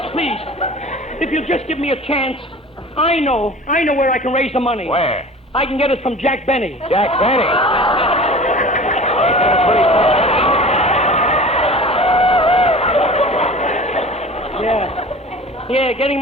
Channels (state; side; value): normal; both; correlation 0.39